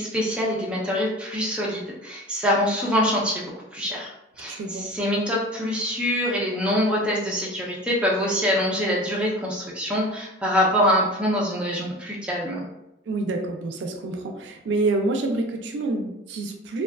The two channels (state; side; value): normal; both; correlation 0.36